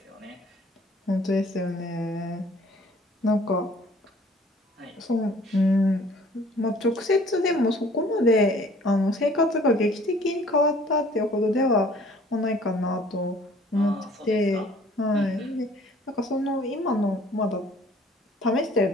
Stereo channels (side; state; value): both; normal; correlation 0.54